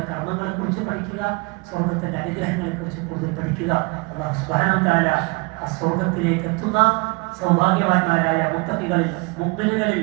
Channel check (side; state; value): left; quieter; 28.5 dB